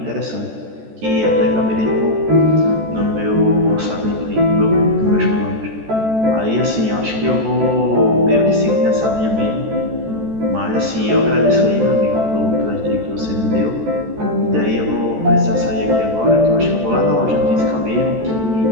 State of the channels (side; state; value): left; late; 14 ms